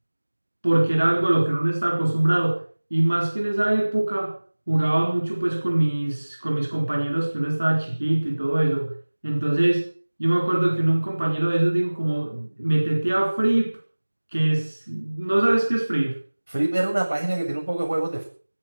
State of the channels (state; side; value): inverted; both; correlation -1.00